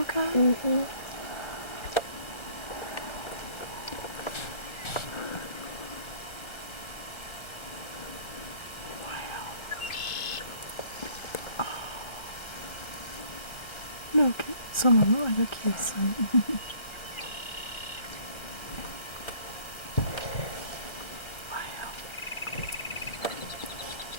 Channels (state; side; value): late; right; 1.3 ms